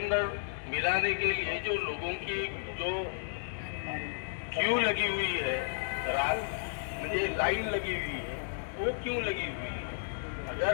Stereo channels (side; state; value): right; silent; digital silence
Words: मिलाने के लिए जो लोगों की जो क्यू लगी हुई है, रात मुझे लाइन लगी हुई है, वो क्यों लगी हुई है?